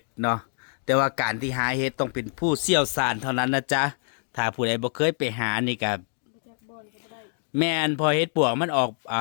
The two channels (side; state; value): right; silent; 61 dB below the other